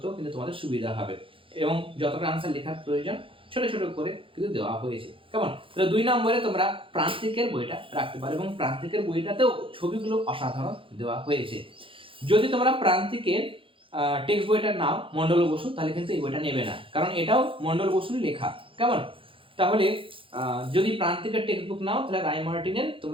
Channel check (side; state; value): left; late; 0.25 ms